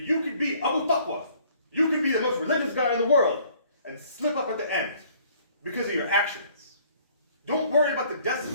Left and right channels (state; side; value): inverted; both; correlation -0.58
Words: could be Abu Taqwa. You could be the most religious guy in the world and slip up at the end because of your actions. Don't worry about the